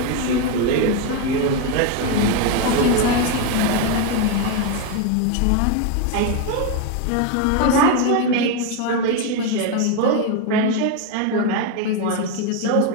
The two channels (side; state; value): both; different; correlation 0.02